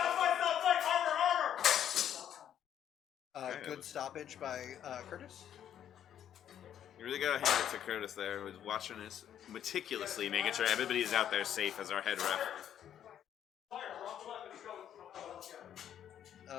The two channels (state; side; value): quieter; right; 10.0 dB